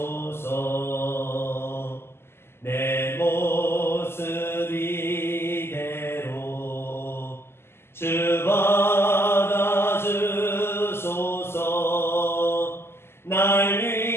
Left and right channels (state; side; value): late; right; 0.12 ms